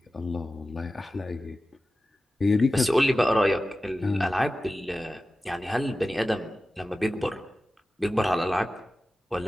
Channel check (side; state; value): both; normal; correlation 0.95